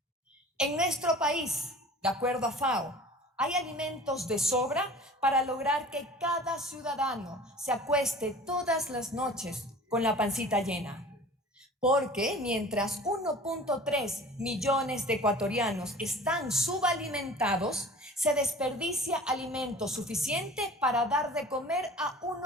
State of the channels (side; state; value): both; normal; correlation 0.42